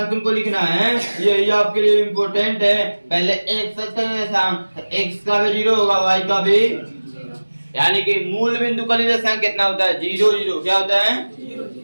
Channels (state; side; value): inverted; both; correlation -1.00